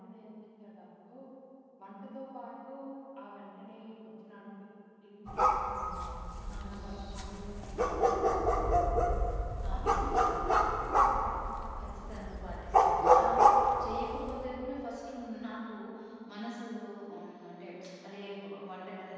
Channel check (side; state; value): both; identical; correlation 1.00